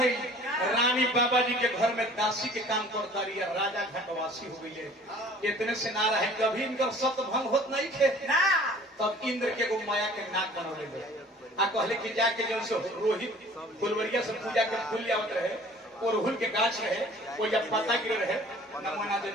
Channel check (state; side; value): normal; both; correlation 0.49